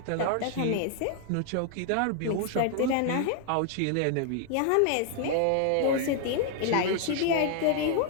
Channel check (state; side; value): different; both; correlation 0.00